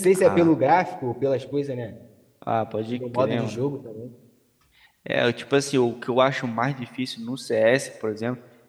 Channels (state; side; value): identical; both; correlation 1.00